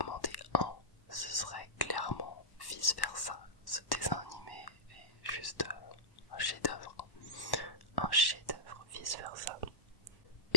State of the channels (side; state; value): right; late; 1.1 ms